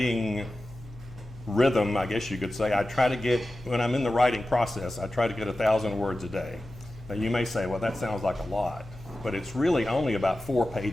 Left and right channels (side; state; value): left; noise; hum, 18 dB below the sound